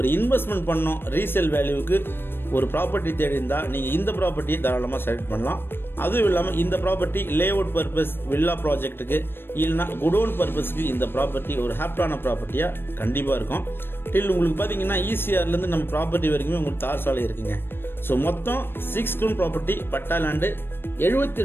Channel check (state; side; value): late; right; 0.10 ms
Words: இன்வெஸ்ட்மெண்ட் பண்ணோம், ரீசேல் வேல்யூவுக்கு ஒரு ப்ராப்பர்ட்டி தேடி இருந்தால் நீங்கள் இந்த ப்ராப்பர்ட்டியை தாராளமாக செலக்ட் பண்ணலாம். அதுவும் இல்லாமல் இந்த property layout purpose, villa ப்ராஜெக்ட்டுக்கு இல்லைனா குடோன் பர்பஸ்க்கு இந்த ப்ராப்பர்ட்டி ஒரு ஹாப்டான ப்ராப்பர்ட்டியாக கண்டிப்பாக இருக்கும். டில் உங்களுக்கு பார்த்தீங்கன்னா ECRலேருந்து நம்ம ப்ராப்பர்ட்டி வரைக்குமே உங்களுக்கு தார் சாலை இருக்குங்க. ஸோ மொத்தம் 6 கிரவுண்ட் ப்ராப்பர்ட்டி பட்டா லேண்டு